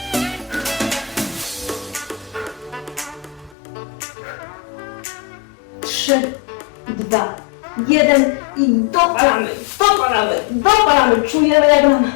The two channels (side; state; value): right; drops out; at 3.6 s